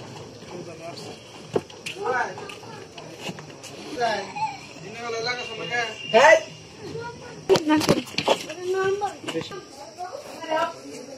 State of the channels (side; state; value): both; identical; correlation 1.00